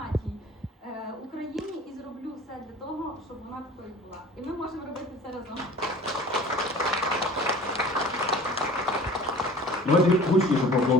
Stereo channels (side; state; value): both; normal; correlation 0.44